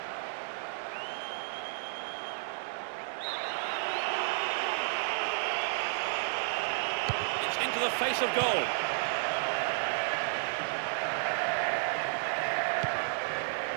It's into the face of goal.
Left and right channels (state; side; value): silent; left; digital silence